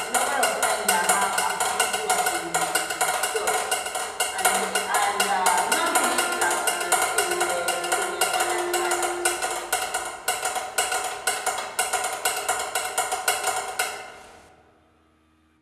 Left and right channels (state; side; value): identical; both; correlation 1.00